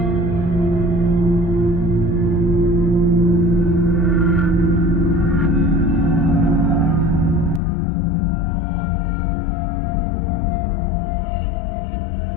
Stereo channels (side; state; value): right; drops out; at 7.6 s